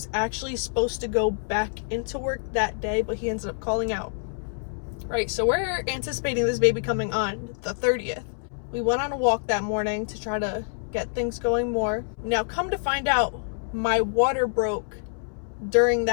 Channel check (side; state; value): right; silent; 61 dB below the other